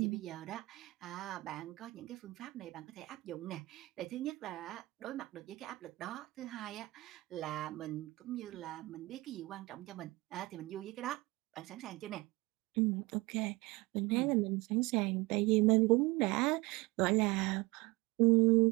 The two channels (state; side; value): quieter; left; 22.0 dB